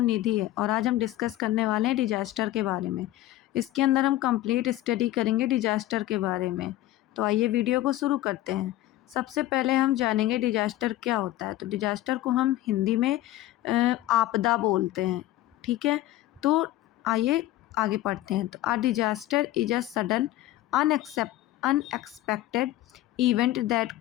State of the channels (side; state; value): right; quieter; 15.2 dB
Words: निधि है और आज हम डिस्कस करने वाले हैं डिजास्टर के बारे में। इसके अंदर हम कंप्लीट स्टडी करेंगे डिजास्टर के बारे में। तो आइए वीडियो को शुरू करते हैं। सबसे पहले हम जानेंगे डिजास्टर क्या होता है। तो डिजास्टर को हम हिंदी में आपदा बोलते हैं। ठीक है, तो आइए आगे पढ़ते हैं। तो disaster is a sudden unexpected event that